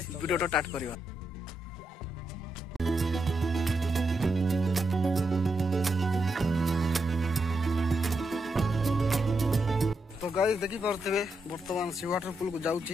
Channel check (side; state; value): both; normal; correlation 0.83